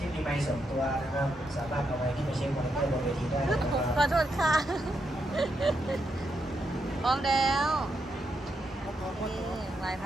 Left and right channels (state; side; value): normal; both; correlation 0.81